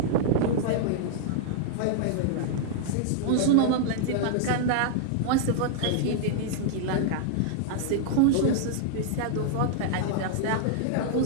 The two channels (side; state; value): both; different; correlation -0.01